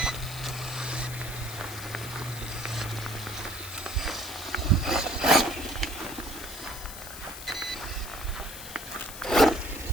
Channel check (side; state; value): left; noise; hiss, 11 dB below the sound